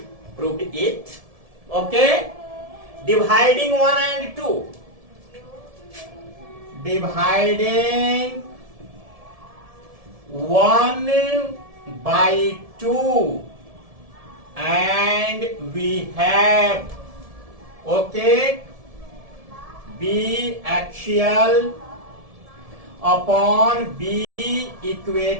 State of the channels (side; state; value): left; late; 1.7 ms